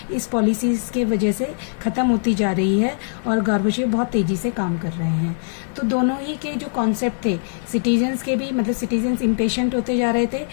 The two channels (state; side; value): silent; right; digital silence